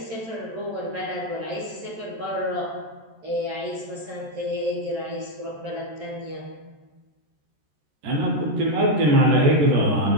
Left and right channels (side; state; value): left; late; 13 ms